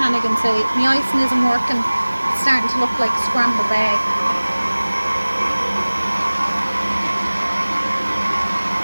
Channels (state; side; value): inverted; both; correlation -1.00